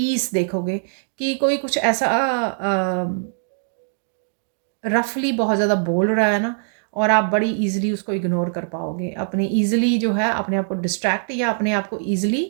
देखोगे, कि कोई कुछ ऐसा रफली बहुत ज़्यादा बोल रहा है ना, और आप बड़ी इजीली उसको इग्नोर कर पाओगे, अपने इजीली जो है अपने आप को डिस्ट्रैक्ट या अपने आप को इजीली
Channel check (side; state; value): left; silent; digital silence